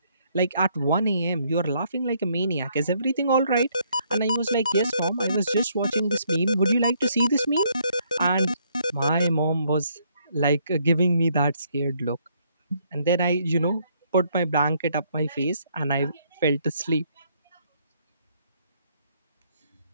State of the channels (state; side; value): inverted; both; correlation -0.69